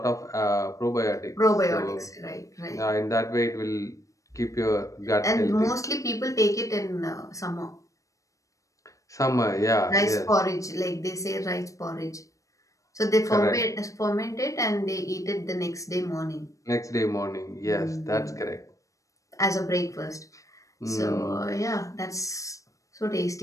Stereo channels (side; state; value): right; late; 0.16 ms